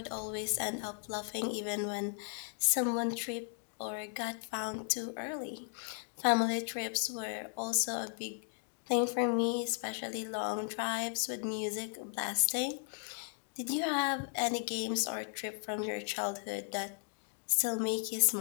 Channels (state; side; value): silent; right; 54 dB below the other